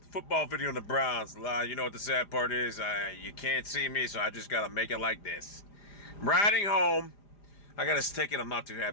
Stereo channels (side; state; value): right; late; 5.0 ms